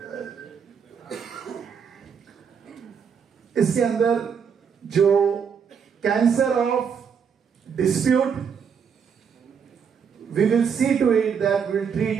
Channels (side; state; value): left; quieter; 6.8 dB